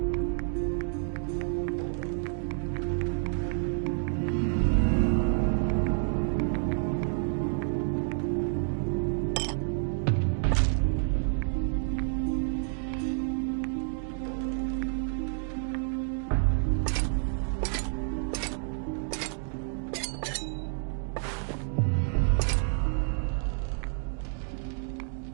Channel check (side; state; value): left; silent; 58 dB below the other